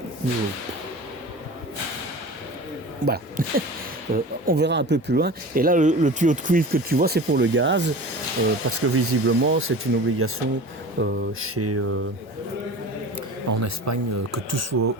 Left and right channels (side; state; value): both; normal; correlation 0.36